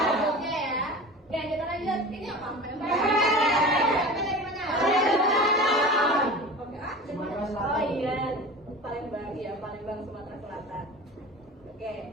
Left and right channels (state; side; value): normal; both; correlation 0.34